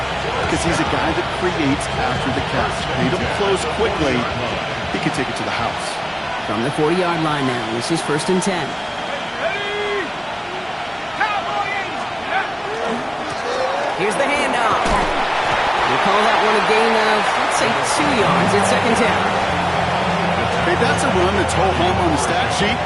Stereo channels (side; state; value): both; identical; correlation 1.00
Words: Because he's a guy that creates after the catch. They don't close quickly. He can take it to the house. From the 40-yard line now, this is 1st and 10. Here's the handoff. We call that one a gain of, let's say, 2 yards. It's 2nd down. Hey, that's a run that's ho-hum on the stat sheet,